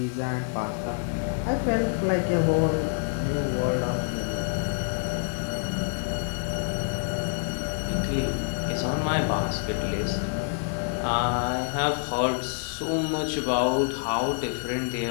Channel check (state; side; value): silent; right; 60 dB below the other